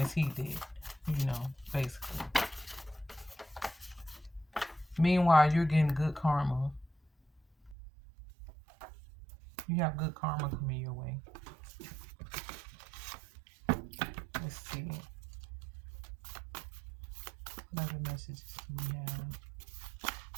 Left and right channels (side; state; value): left; drops out; at 7.8 s